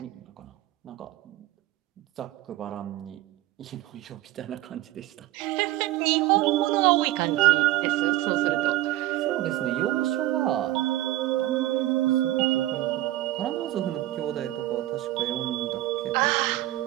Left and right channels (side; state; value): left; quieter; 16.0 dB